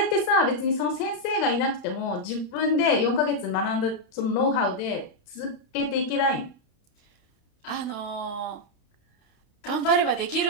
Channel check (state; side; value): late; right; 31 ms